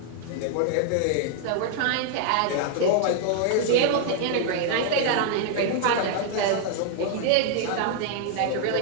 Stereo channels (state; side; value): different; both; correlation 0.00